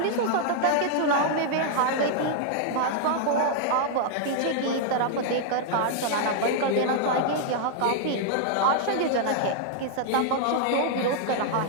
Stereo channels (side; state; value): both; different; correlation -0.01